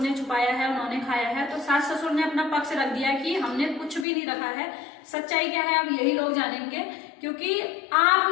ने छुपाया है, उन्होंने खाया है, तो सास ससुर ने अपना पक्ष रख दिया कि हमने कुछ भी नहीं रखा है। सच्चाई क्या है अब यही लोग जानेंगे, क्योंकि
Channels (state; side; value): drops out; right; at 4.0 s